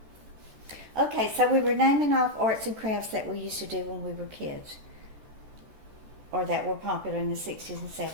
Okay, so we were naming off arts and crafts that we used to do when we were kids, or that were popular in the 60s and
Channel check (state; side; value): late; left; 14 ms